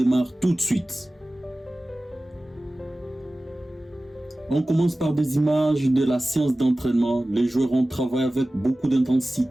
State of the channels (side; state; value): both; normal; correlation 0.97